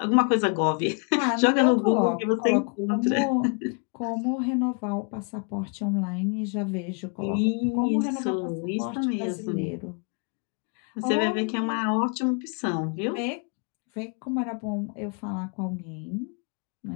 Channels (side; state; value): right; quieter; 37.5 dB